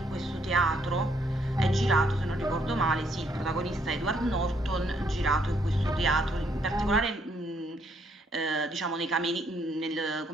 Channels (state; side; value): normal; both; correlation 0.71